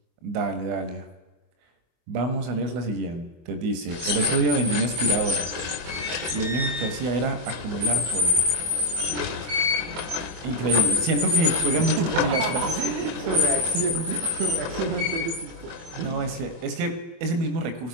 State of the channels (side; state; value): left; late; 24 ms